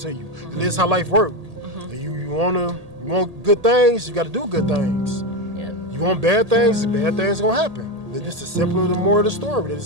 you. And this is how life works. You want good things, you got to do good things. Yep. You want bad things gonna happen. This is simply the more of the story.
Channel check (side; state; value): left; late; 1.8 ms